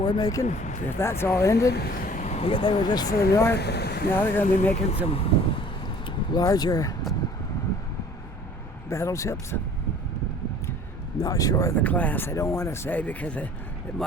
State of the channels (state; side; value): normal; both; correlation 0.50